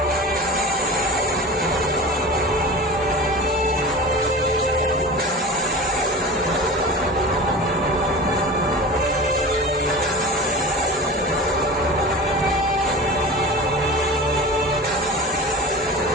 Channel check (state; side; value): normal; both; correlation 0.33